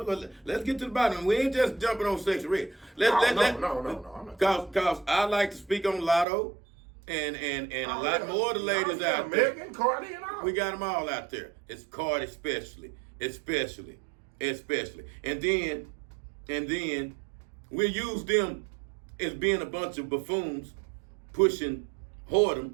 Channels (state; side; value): drops out; left; at 6.2 s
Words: Let's get to the bottom. We ain't just jumping on Sexy Red. No, I'm not. Cause I like to speak on Lotto and a lot more of the ladies out there. Megan, Cardi, and all. We got them all out there. It's Cardi especially. And then we use them as being a bunch of buffoons pushing